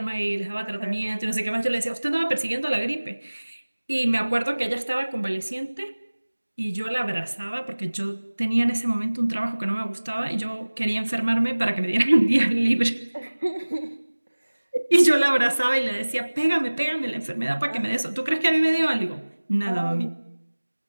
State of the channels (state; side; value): inverted; both; correlation -1.00